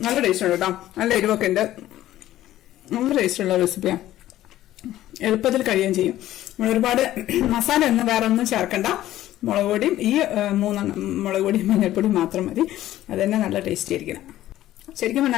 നല്ല ടേസ്റ്റ് ഉണ്ട് കേട്ടോ. നല്ല എരിവൊക്കെ ഉണ്ട്, നല്ല ടേസ്റ്റുള്ള റെസിപ്പിയാണ്. എളുപ്പത്തിൽ കഴിയുകയും ചെയ്യും. നമ്മൾ ഒരുപാട് മസാല ഒന്നും വേറെ ഒന്നും ചേർക്കണ്ട. മുളക് പൊടിയും ഈ 3 മുളക് പൊടിയും മഞ്ഞൾപ്പൊടിയും മാത്രം മതി. അത് തന്നെ നല്ല ടേസ്റ്റി ആയിരിക്കണം. ശരിക്കും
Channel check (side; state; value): right; quieter; 14.0 dB